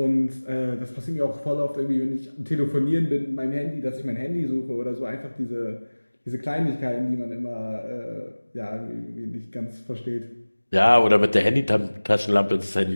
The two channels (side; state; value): both; inverted; correlation -1.00